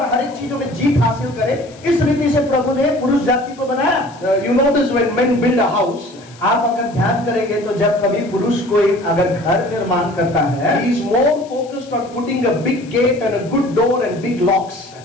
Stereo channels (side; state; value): left; noise; hiss, 25 dB below the sound